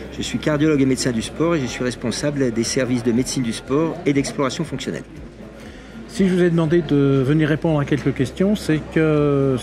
Je suis cardiologue et médecin du sport et je suis responsable des services de médecine du sport et d'exploration fonctionnelle. Si je vous ai demandé de venir répondre à quelques questions, c'est que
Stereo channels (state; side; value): identical; both; correlation 1.00